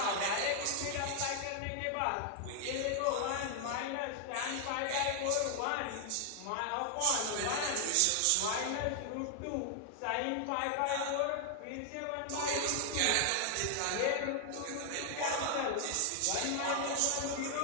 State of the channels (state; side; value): different; both; correlation 0.00